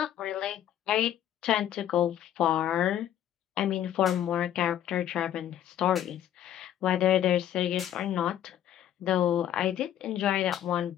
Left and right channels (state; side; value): quieter; right; 11.2 dB